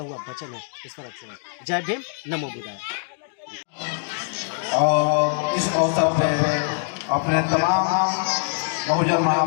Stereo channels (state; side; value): silent; right; digital silence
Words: हुआ वचन है ईश्वर से। जय भीम, नमो बुद्धाय। और इस अवसर पे अपने तमाम बहुजन